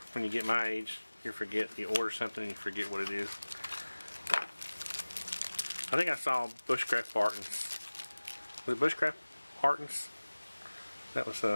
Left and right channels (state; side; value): inverted; both; correlation -1.00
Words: when you get my age? You order something and you forget what it is. I think I saw Bushcraft Bartons. Was it Bushcraft Bartons? That was